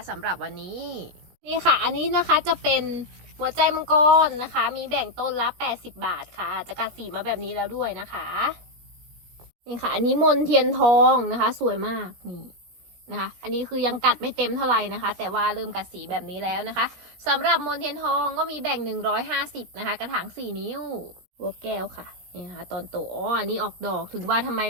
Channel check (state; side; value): late; left; 17 ms